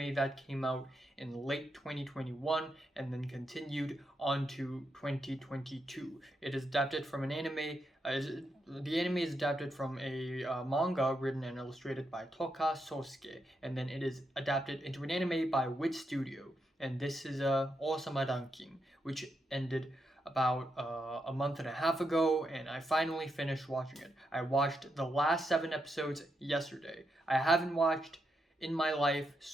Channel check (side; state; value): both; normal; correlation 0.83